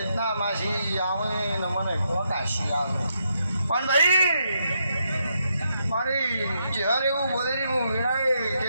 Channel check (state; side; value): inverted; both; correlation -0.80